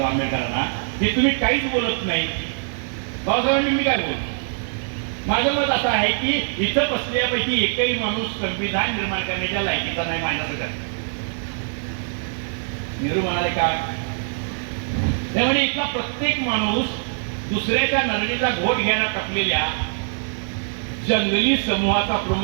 आंबेडकरांना, हे तुम्ही काहीच बोलत नाही. बाबासाहेबांनी मी काय बोलतो? माझं मत असं आहे की इथं बसल्यापैकी एकही माणूस संविधान निर्माण करण्याच्या लायकीचा नाही माझ्याकडे. नेहरू म्हणाले का? त्यामुळे इथला प्रत्येक माणूस दुसऱ्याच्या नरडीचा घोट घ्यायला टपलेल्या जंगली समूहाचा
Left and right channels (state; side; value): silent; left; 63 dB below the other